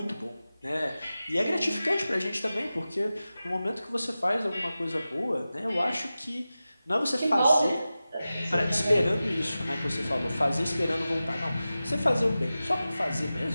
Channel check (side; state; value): both; inverted; correlation -0.95